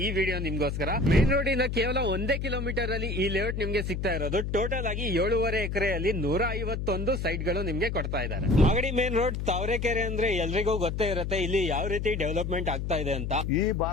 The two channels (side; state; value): left; noise; hum, 3 dB below the sound